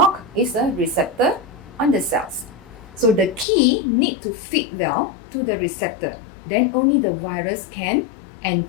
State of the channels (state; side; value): drops out; right; at 3.5 s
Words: is a receptor on the cells. So the key need to fit well to the receptor. Then only the virus can